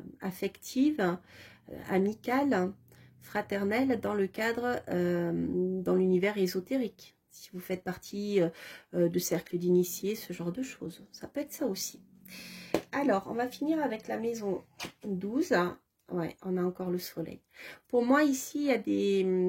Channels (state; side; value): identical; both; correlation 1.00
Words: affectives, amicales, fraternelle dans le cadre, dans l'univers ésotérique. Si vous faites partie de cercles d'initiés, ce genre de choses. Ça peut être ça aussi. Alors, on va finir avec la maison 12. Ouais, on a encore le soleil. Pour moi, ici, il y a des...